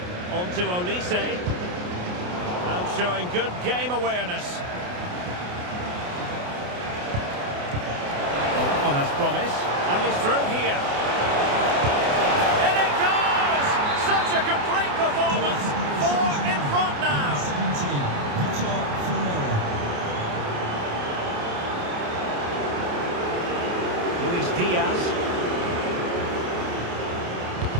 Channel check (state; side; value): late; left; 28 ms